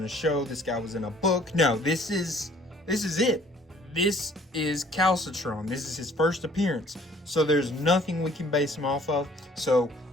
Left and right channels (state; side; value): normal; both; correlation 0.57